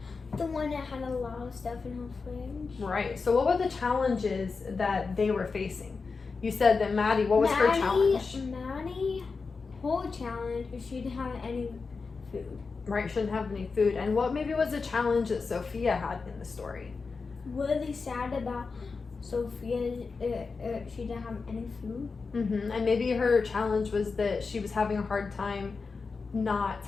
The one that had a lot of stuff in her fridge. Right. So what were the challenges that they were facing? You said that Maddie, what was her challenge? Maddie, whole challenge is she didn't have any food. Right, shouldn't have any food. And what maybe was a challenge that Sophia had in the story? Really sad about Sophia, she didn't have any food. Mm-hmm. And maybe her challenge was that she was having a hard time not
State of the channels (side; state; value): right; quieter; 4.6 dB